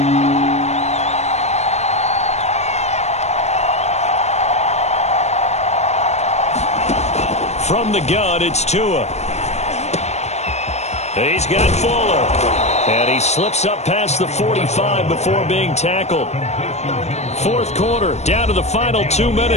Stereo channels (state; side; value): late; right; 0.32 ms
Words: From the gun, it's Tua. He's got Fuller. And he slips up past the 45 before being tackled. 4th quarter, down to the final 2